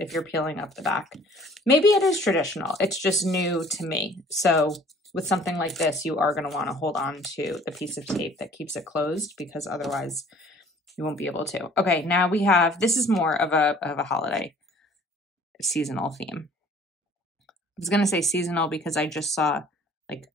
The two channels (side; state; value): both; normal; correlation 0.52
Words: you're peeling up the back, maybe it is traditional. It's just new to me. So with something like this, you are going to want to hold on to the piece of tape that keeps it closed, because otherwise you won't be able to. Okay, now we have, this is more of a holiday seasonal theme. I was going to say seasonal because I just saw like